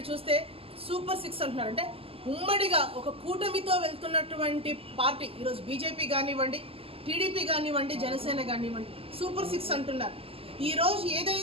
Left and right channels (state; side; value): late; left; 0.28 ms